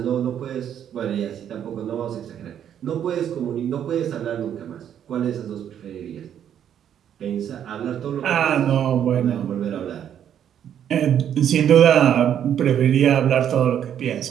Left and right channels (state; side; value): quieter; left; 9.5 dB